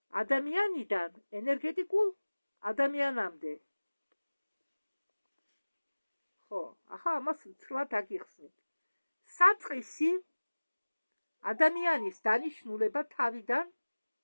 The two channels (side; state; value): both; inverted; correlation -1.00